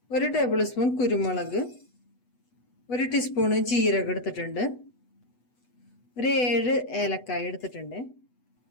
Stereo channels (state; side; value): late; right; 8.1 ms